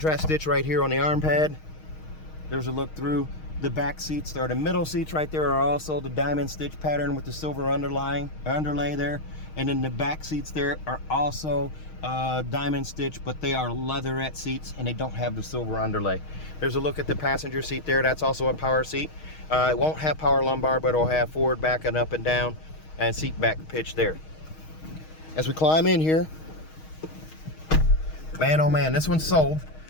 stitch right here on the arm pad. There's a look through. The back seats, or the middle seats right there, are also the diamond stitch pattern with the silver underlay there. And then the back seats there are also diamond stitch, but they are leatherette seats and they don't have the silver underlay. There's a look at the passenger seat there. That's also a power seat. It won't have power lumbar, but it'll have forward, back, and up and down, and seat back pitch there. As we climb in here, man, oh man, this one's sold.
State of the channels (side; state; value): right; late; 6.4 ms